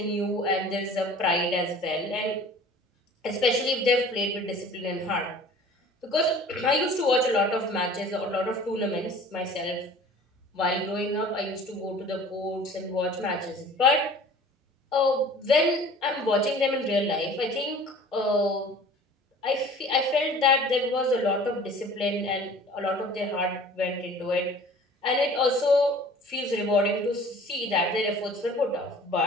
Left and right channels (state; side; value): normal; both; correlation 0.46